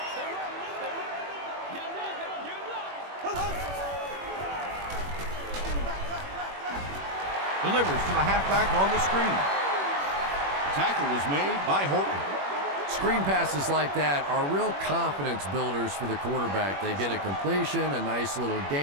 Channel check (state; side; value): late; left; 21 ms